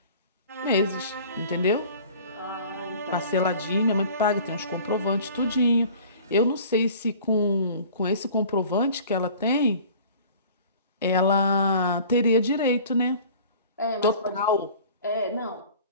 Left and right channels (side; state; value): both; inverted; correlation -0.46